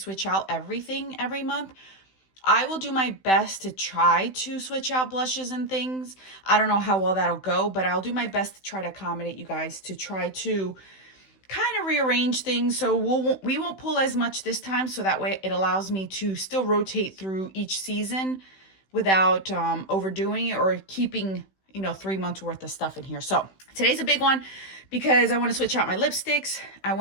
out everything every month. I will do my best to try to switch out blushes and things. I don't know how well that'll go, but I'll do my best to try to accommodate you guys to try to kind of rearrange things. So we won't pull as much this time, so that way it allows me to still rotate through each season without overdoing it or keeping 3 months worth of stuff in here. So today's a big one because I want to switch out my lipsticks. I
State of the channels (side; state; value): right; late; 16 ms